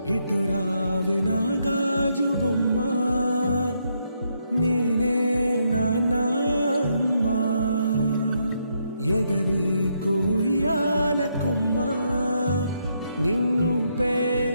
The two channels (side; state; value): both; inverted; correlation -0.77